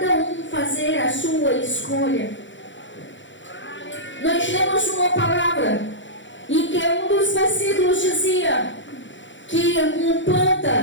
um fazer a sua escolha. Nós lemos uma palavra em que um dos versículos dizia que um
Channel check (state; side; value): late; right; 0.54 ms